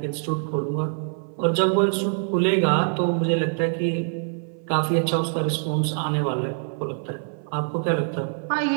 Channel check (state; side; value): silent; left; 58 dB below the other